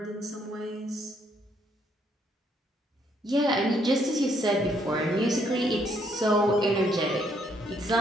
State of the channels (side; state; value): both; normal; correlation 0.70